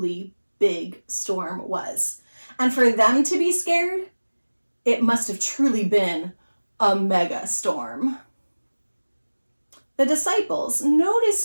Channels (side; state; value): both; inverted; correlation -1.00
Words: big storm was. And for them to be scared, it must have truly been a mega storm. The disciples,